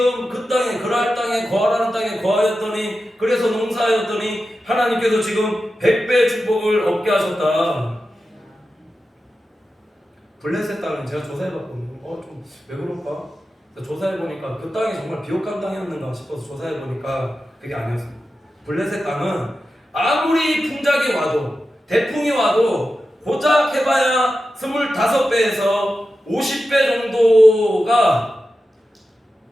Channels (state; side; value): normal; both; correlation 0.92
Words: 그 땅에 그랄 땅에 거하라는 땅에 거하였더니 그래서 농사하였더니 하나님께서 지금 100배 축복을 얻게 하셨다. 블레셋 땅은 제가 조사해봤거든요. 좀 왜 그럴까? 조사해보니까 그 땅이 정말 비옥한 땅이었는가 싶어서 조사해보니까 그게 아니었습니다. 블레셋 땅은 아무리 풍작이 와도 대풍이 와도 고작 해봐야 25배에서 50배 정도가